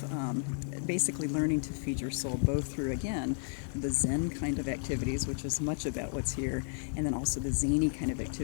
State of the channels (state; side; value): silent; right; 56 dB below the other